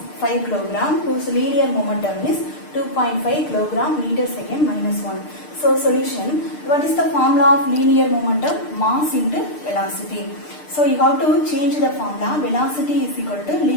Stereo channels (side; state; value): right; late; 6.6 ms